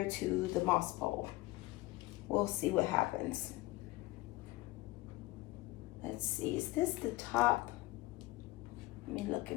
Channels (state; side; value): quieter; right; 19.5 dB